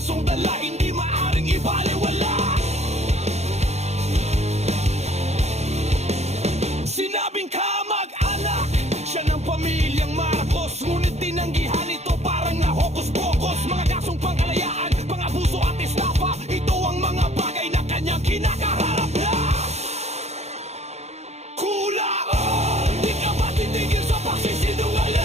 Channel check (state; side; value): late; left; 0.32 ms